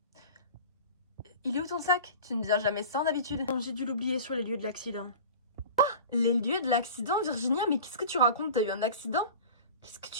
Il est où ton sac? Tu ne viens jamais sans d'habitude. J'ai dû l'oublier sur les lieux de l'accident. Ah, les lieux de l'accident, Virginia? Mais qu'est-ce que tu racontes? T'as eu un accident? Qu'est-ce que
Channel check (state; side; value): inverted; both; correlation -0.37